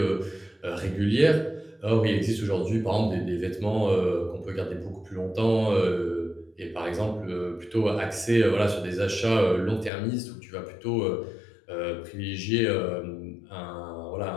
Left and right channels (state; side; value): drops out; right; at 9.9 s